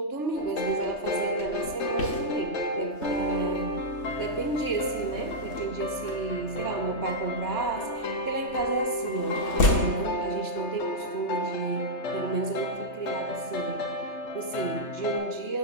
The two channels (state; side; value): late; right; 3.3 ms